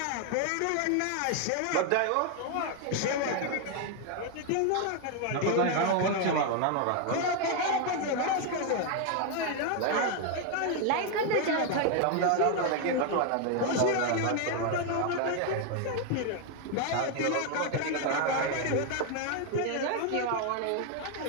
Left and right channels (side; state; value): both; different; correlation 0.01